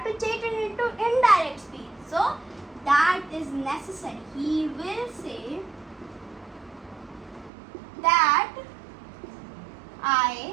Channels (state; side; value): drops out; left; at 7.5 s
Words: to change it into indirect speech. So that is necessary. He will say that